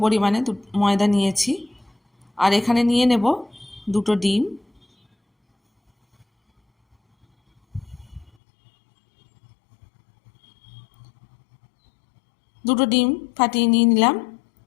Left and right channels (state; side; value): drops out; right; at 8.3 s